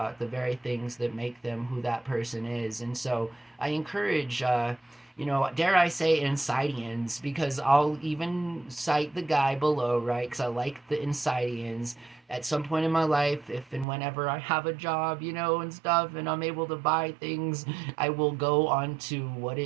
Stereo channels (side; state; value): left; drops out; at 13.9 s